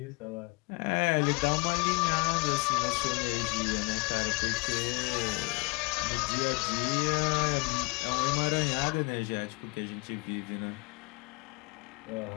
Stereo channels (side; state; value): right; quieter; 29.5 dB